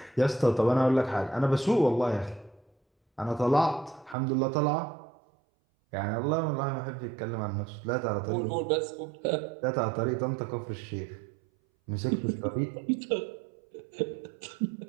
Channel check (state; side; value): drops out; left; at 4.2 s